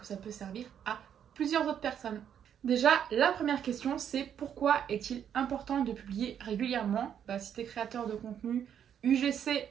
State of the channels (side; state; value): left; quieter; 9.0 dB